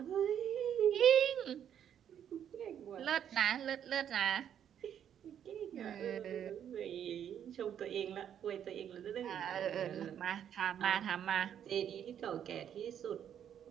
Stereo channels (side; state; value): left; quieter; 9.4 dB